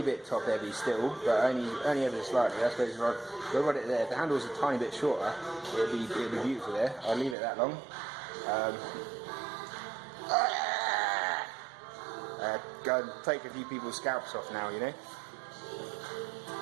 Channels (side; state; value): left; drops out; at 7.4 s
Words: bit top heavy still, but only ever slightly. I suppose if I got it there, if the handle was a tiny bit shorter, it'd be beautiful there. I'll leave it that long. Go and take a few people's scalps off now, you know.